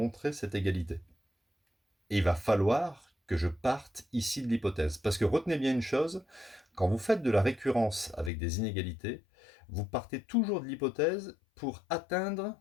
cette égalité. Et il va falloir que je parte ici de l'hypothèse. Parce que retenez bien une chose, quand vous faites de la récurrence avec des inégalités, vous partez toujours de l'hypothèse pour atteindre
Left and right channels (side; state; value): right; drops out; at 8.3 s